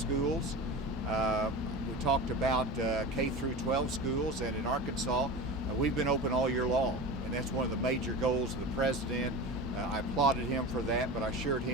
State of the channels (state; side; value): normal; both; correlation 0.30